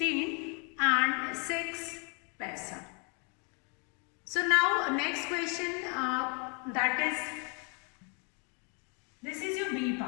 and 6 paisa. So now next question, that is, this is your B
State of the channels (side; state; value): right; quieter; 34.9 dB